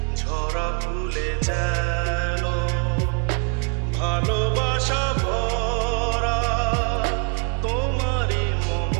ঝরা ফুলে যেন ভালোবাসা ভরা তোমারই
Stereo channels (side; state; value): left; quieter; 37.4 dB